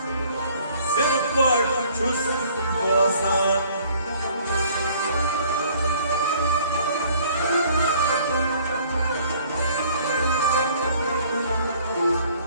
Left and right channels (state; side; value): inverted; both; correlation -0.57